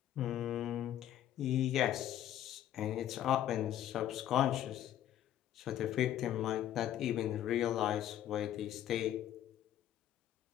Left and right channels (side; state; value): right; quieter; 11.7 dB